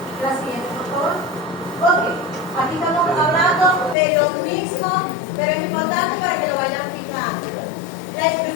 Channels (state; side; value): drops out; right; at 4.0 s